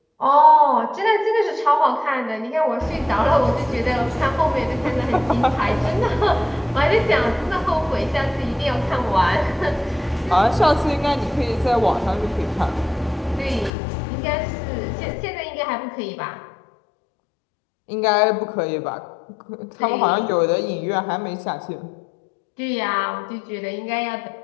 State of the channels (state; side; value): drops out; right; at 13.7 s